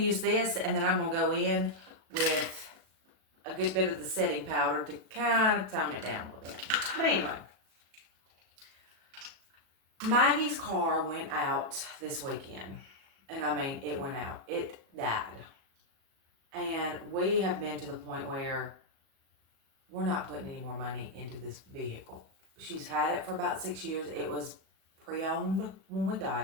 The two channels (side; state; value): left; late; 37 ms